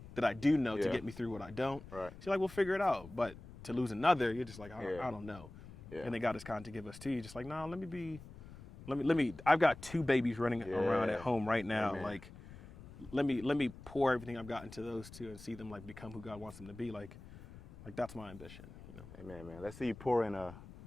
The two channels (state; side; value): noise; left; rumble, 16 dB below the sound